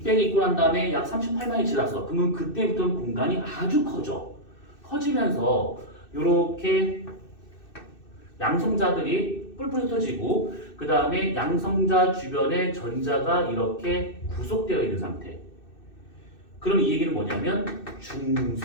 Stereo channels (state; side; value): late; right; 2.6 ms